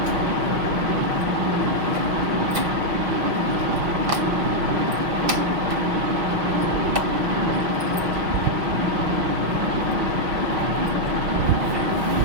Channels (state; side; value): late; left; 6.0 ms